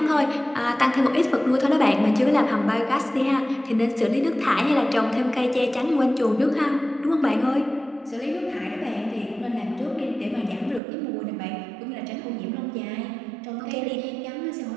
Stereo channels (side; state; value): left; drops out; at 10.8 s